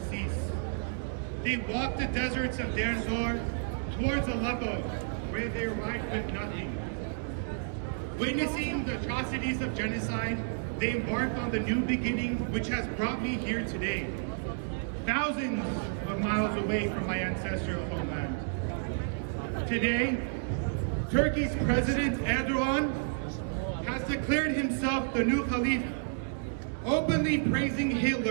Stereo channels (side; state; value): left; silent; digital silence